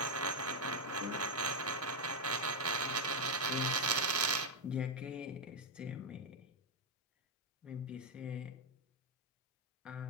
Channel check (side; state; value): both; normal; correlation 0.03